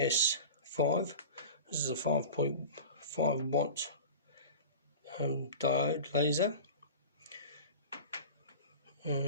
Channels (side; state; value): both; inverted; correlation -0.34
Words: This is a 5.5 watt diode laser,